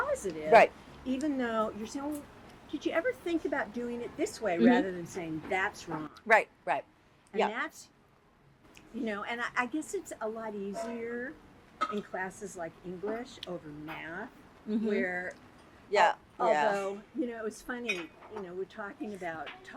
Right. Even though you're saying, well, did you ever think about doing it this way Mhm. rather than saying that's wrong? Right. Right. And Yeah. that's, and I guess it's a lot easier in classes like English over math, Mhm. where Yeah. Yeah. although, it was funny, we're talking about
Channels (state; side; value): identical; both; correlation 1.00